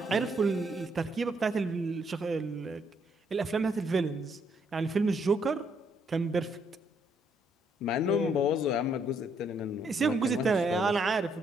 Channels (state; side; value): normal; both; correlation 0.72